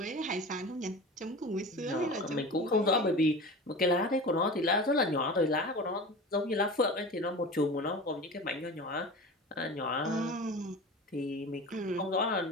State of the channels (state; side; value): normal; both; correlation 0.33